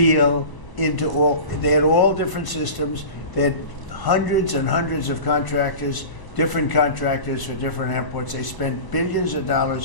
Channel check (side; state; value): right; late; 1.0 ms